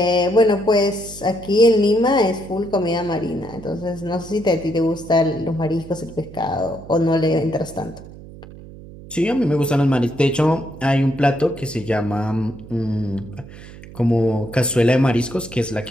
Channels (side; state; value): right; noise; hum, 17 dB below the sound